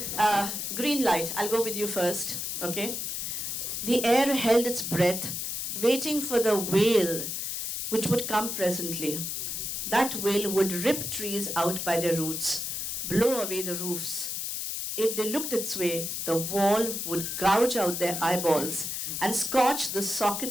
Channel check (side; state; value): left; noise; hiss, 3 dB below the sound